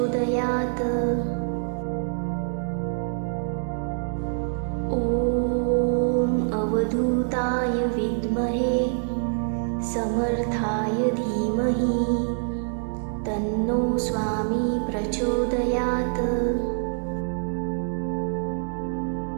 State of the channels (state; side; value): silent; left; digital silence